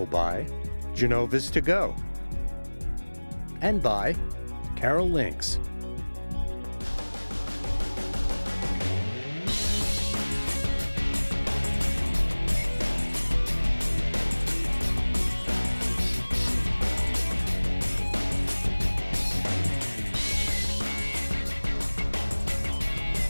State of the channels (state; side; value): inverted; both; correlation -1.00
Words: by Genova's To Go and by Carroll Links.